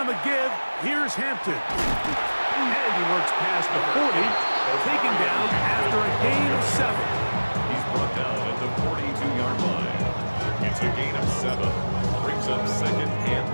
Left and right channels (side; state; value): both; inverted; correlation -1.00